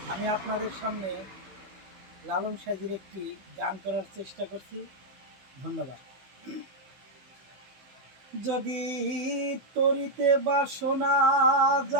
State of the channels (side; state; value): left; late; 16 ms